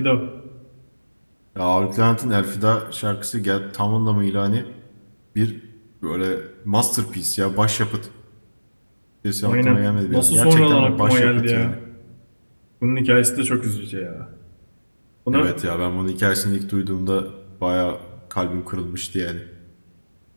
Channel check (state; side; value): inverted; both; correlation -1.00